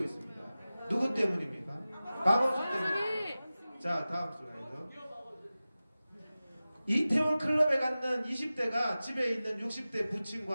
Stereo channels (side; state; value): both; inverted; correlation -0.96